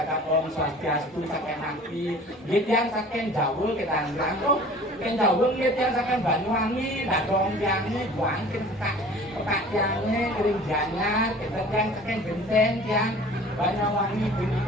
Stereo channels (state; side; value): normal; both; correlation 0.45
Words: Om Swastiastu saking nanti, dia saking Jawa kita nang, oh, saking Jawa dia saking Banyuwangi, datong yangnya buang petak yangnya kering janyar, kita yang saking Genteng yang Banyuwangi